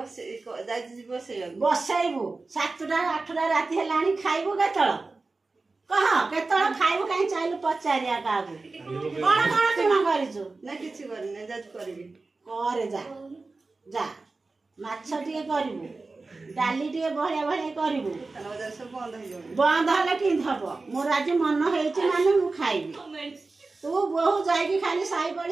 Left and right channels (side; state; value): left; quieter; 3.7 dB